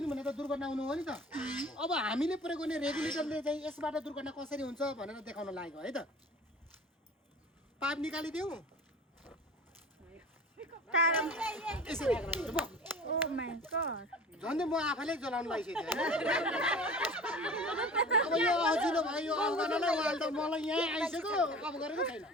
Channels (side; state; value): both; normal; correlation 0.40